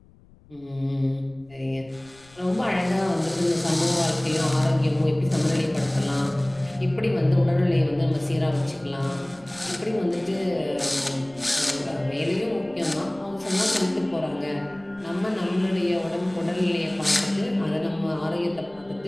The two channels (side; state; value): left; noise; rumble, 26 dB below the sound